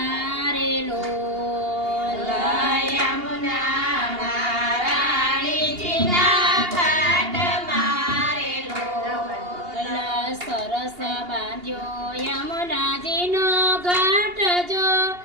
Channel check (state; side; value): late; left; 2.8 ms